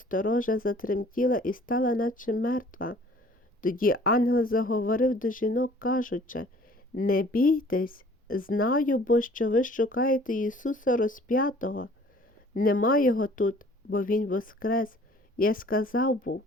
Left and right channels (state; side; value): normal; both; correlation 0.52